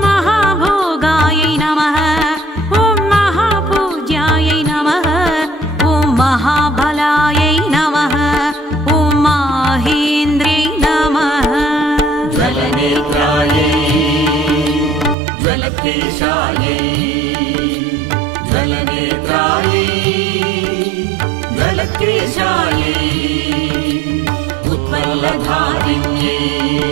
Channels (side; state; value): left; drops out; at 15.2 s